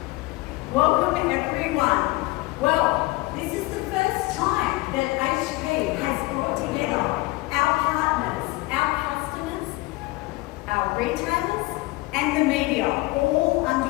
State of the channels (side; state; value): right; quieter; 21.3 dB